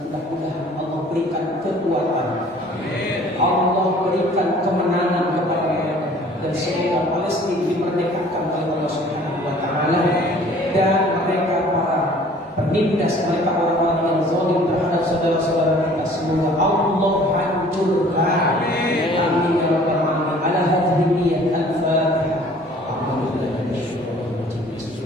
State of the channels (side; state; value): both; normal; correlation 0.52